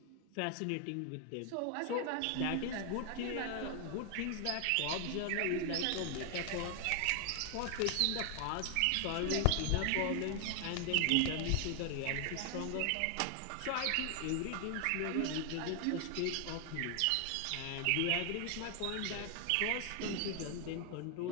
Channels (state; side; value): different; both; correlation 0.00